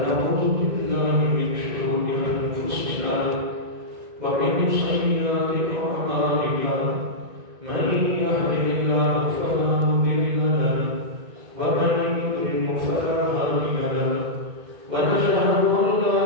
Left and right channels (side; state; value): left; late; 1.6 ms